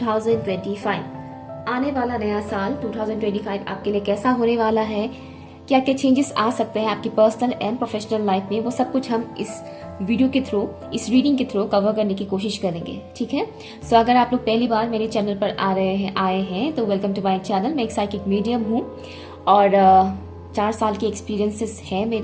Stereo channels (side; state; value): both; identical; correlation 1.00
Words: आने वाला नया साल 2025 आपके लिए कैसा होने वाला है, क्या क्या चेंजेस आ सकते हैं आपकी पर्सनल एंड प्रोफेशनल लाइफ में, वो सब कुछ हम इस वीडियो के थ्रू, इस रीडिंग के थ्रू कवर करने की कोशिश करेंगे। ठीक है। सो अगर आप लोग पहली बार मेरे चैनल पर आए हैं तो वेलकम टू माय चैनल। मैं एक साइकिक मीडियम हूँ और 4 साल के एक्सपीरियंसेस हैं